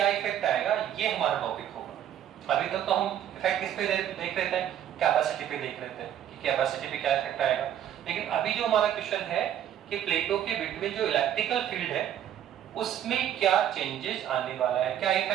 इफेक्ट आएगा, ये हमारा टॉपिक होगा। अभी तक तो हम इफेक्ट किस पे देख रहे थे? कैपेसिटी पे देख रहे थे कि कैपेसिटी पे क्या इफेक्ट आएगा। लेकिन अभी जो हमारा क्वेश्चन है कि प्लेटों के बिटवीन जो इलेक्ट्रिकल फील्ड है, उसमें क्या चेंजेस आने वाला है, क्या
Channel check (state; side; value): quieter; left; 10.6 dB